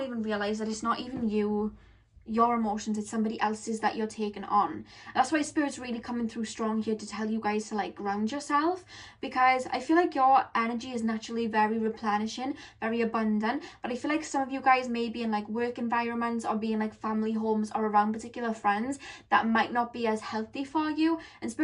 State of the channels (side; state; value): both; identical; correlation 1.00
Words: even realize that it's not even your emotions, it's somebody else's that you're taking on. That's why Spirit's really coming through strong here to tell you guys to like ground yourself, because I feel like your energy is naturally very replenishing, very abundant, but I feel like some of you guys may be in like work environments or be in like family homes or around particular friends that might not be as healthy for you, and